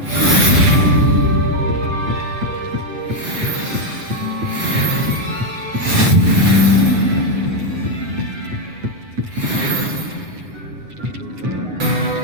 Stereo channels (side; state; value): left; late; 8.8 ms